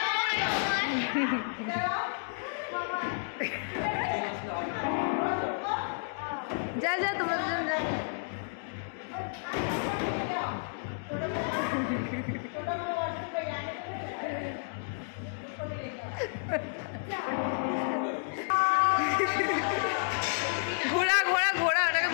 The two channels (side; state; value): right; silent; digital silence